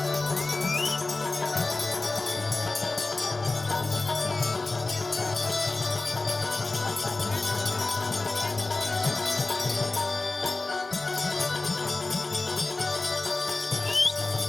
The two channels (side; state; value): right; quieter; 3.4 dB